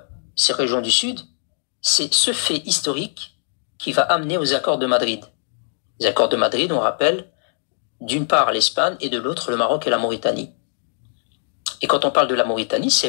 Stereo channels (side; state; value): right; silent; digital silence